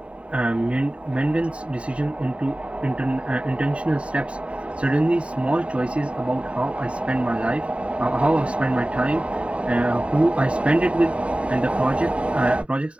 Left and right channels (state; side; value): late; left; 0.062 ms